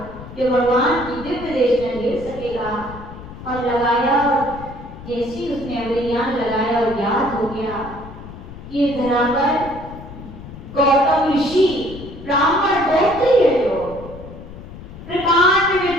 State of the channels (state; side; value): noise; left; rumble, 14 dB below the sound